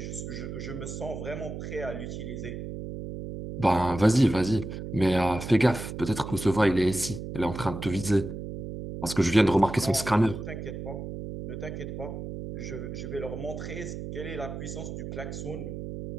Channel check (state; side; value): noise; right; hum, 7 dB below the sound